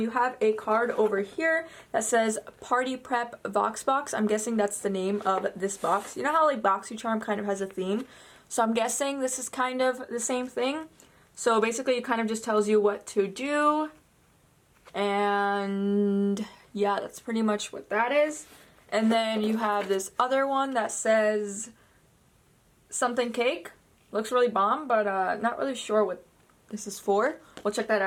have a card over here that says Party Prep Vox Box. I'm guessing that's the name of this box. You know how like BoxyCharm kind of has a theme? So I'm guessing this is kind of the same thing. So basically it kind of just tells you what to do. And yeah, that's pretty much what that is. And then you have this other one that says something cake. Looks really bomb, but not really sure what this is for. We'll check that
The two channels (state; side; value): identical; both; correlation 1.00